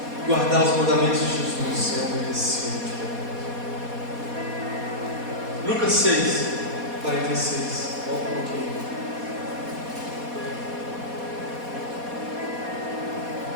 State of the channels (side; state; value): left; late; 4.2 ms